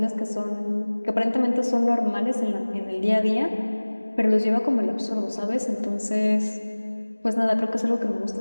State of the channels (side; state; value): both; inverted; correlation -1.00